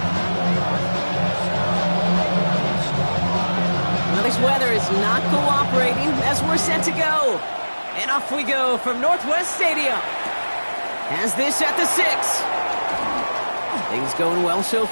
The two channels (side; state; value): both; inverted; correlation -1.00